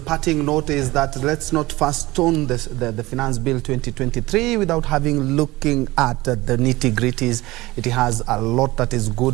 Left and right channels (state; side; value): quieter; left; 19.6 dB